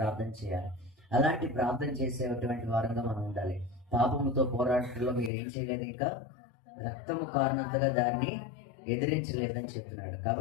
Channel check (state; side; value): drops out; right; at 5.3 s